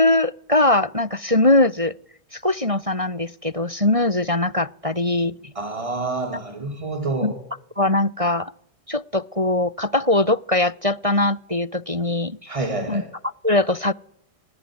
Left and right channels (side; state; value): left; late; 1.6 ms